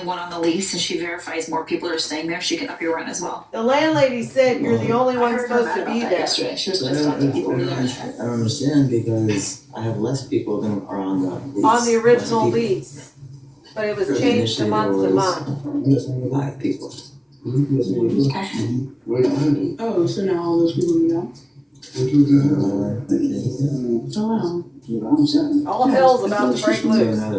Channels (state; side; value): identical; both; correlation 1.00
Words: on the lease and she verifies more people are staying there, she can up your rent as well. The landlady said you're the only one supposed to be there. Yesterday. She was supposed to talk to people over there. I don't understand because I have less people than are on the lease. On the original lease. But it was changed to month to month. 5 people. Okay. Oh, so now all those people are gone? Oh, wow. All hell's about to break So loose. now